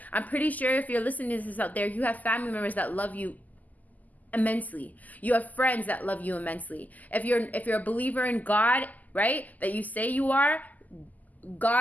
I'm pretty sure if you're listening to this out there, you have family members that love you immensely. You have friends that love you immensely. If you're a believer in God, right, that you say you are,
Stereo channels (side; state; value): right; late; 0.080 ms